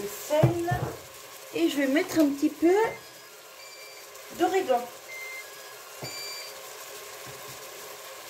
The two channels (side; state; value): both; identical; correlation 1.00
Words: sel, et je vais mettre un petit peu d'origan